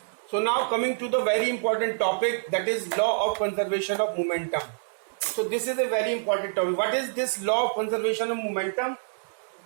So now coming to the very important topic, that is law of conservation of momentum. So this is a very important topic. What is this law of conservation of momentum?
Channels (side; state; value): left; silent; 60 dB below the other